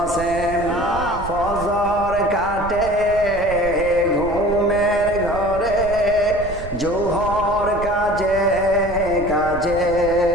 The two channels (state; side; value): noise; right; rumble, 12 dB below the sound